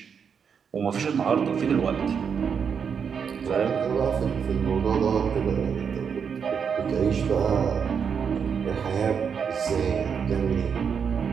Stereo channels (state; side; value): quieter; left; 6.8 dB